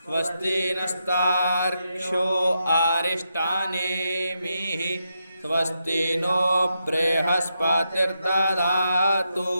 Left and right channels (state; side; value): inverted; both; correlation -0.84